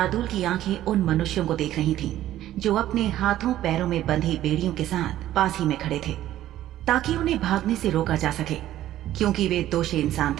की आंखें उन मनुष्यों को देख रही थीं, जो अपने हाथों पैरों में बंधी बेड़ियों के साथ पास ही में खड़े थे, ताकि उन्हें भागने से रोका जा सके, क्योंकि वे दोषी इंसान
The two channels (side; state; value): left; quieter; 13.3 dB